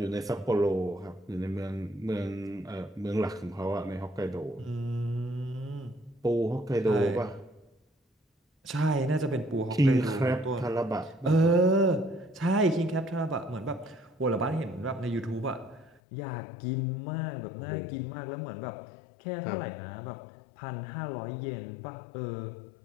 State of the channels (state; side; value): drops out; right; at 16.0 s